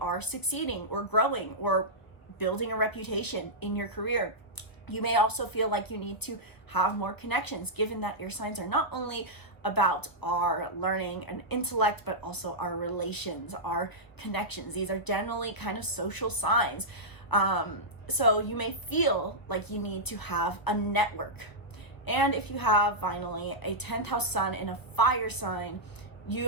succeeding or growing or building a reputation in your career. You may also feel like you need to have more connections, given that air signs are not only about our learning and intellect, but also our relations, our connections. These are generally kind of social signs. So you may feel like you need to have a network. And if you have, finally, a 10th house sun in a fire sign,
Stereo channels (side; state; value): right; late; 1.2 ms